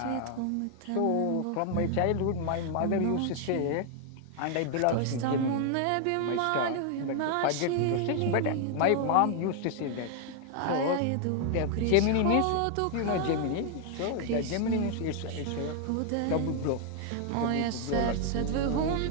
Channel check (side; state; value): both; different; correlation 0.00